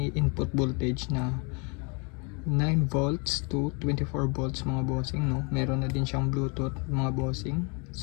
input voltage na 9 volts to 24 volts mga bossing, no. Meron na din siyang Bluetooth mga bossing.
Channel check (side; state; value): right; quieter; 33.0 dB